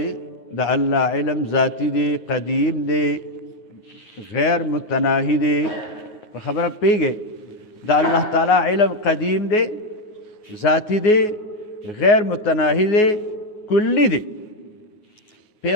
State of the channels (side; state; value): right; late; 9.5 ms